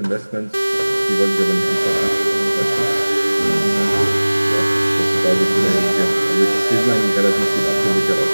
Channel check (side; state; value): both; inverted; correlation -1.00